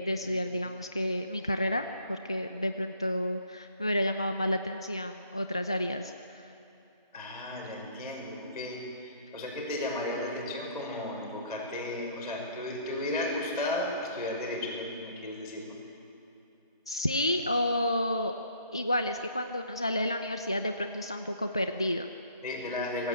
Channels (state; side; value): inverted; both; correlation -0.59